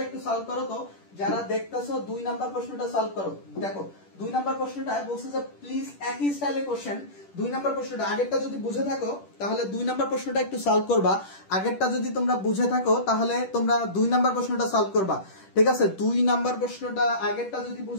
একটু সলভ করো তো, যারা দেখতেছো 2 নাম্বার প্রশ্নটা সলভ করো। দেখো 2 নাম্বার প্রশ্নটা বলছে যে প্লিজ একই স্টাইলে কোশ্চেন। 2 নাম্বার প্রশ্নটা আগেরটা যদি বুঝে থাকো তাহলে 2 নাম্বার প্রশ্নটা একটু সলভ করবা। আগেরটা যদি তোমরা বুঝে থাকো তাহলে তোমরা 2 নাম্বার প্রশ্নটা সলভ করবা। ঠিক আছে, 2 নাম্বার প্রশ্নটা আগেরটা যদি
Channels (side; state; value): right; late; 10 ms